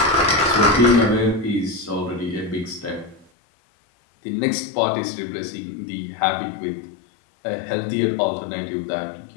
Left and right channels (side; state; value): right; drops out; at 3.2 s